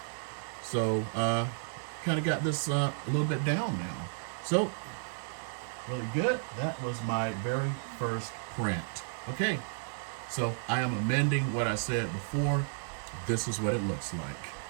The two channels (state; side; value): silent; left; digital silence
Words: So kind of got this a little bit down now. So really good. That was my very first print. Okay, so I am amending what I said before. This is what it looks like.